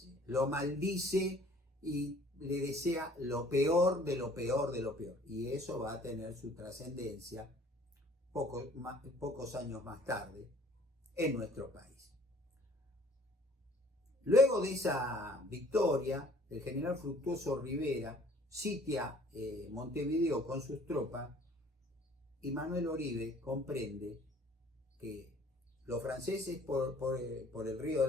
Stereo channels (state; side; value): normal; both; correlation 0.54